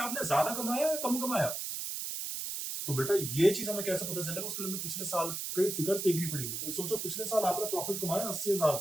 आपने ज्यादा कमाया या कम कमाया? तो बेटा ये चीज हमें कैसे पता चलेगा? उसके लिए हमें पिछले साल के फिगर्स देखनी पड़ेगी। तो सोचो पिछले साल आपने प्रॉफिट कमाया 80,000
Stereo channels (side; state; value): right; noise; hiss, 4 dB below the sound